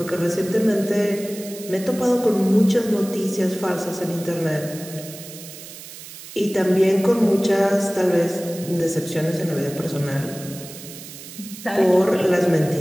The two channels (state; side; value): noise; right; hiss, 14 dB below the sound